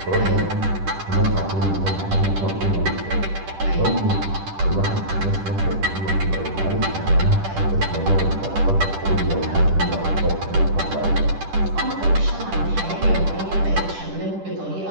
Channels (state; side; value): late; left; 10 ms